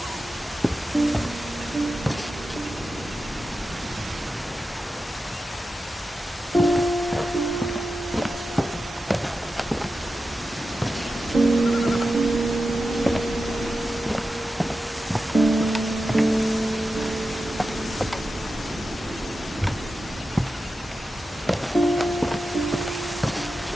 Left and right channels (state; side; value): normal; both; correlation 0.91